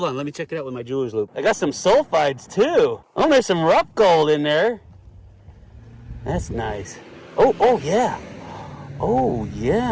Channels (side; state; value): both; identical; correlation 1.00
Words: on, let me check it out with my jeweler's loupe. I got some sulfides too. Oh, there's some rough gold in there. That's nice. Oh yeah. Oh